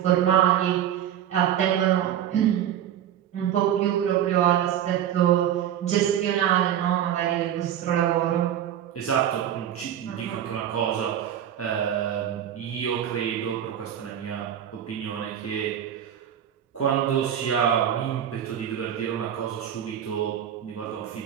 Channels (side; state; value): left; quieter; 10.4 dB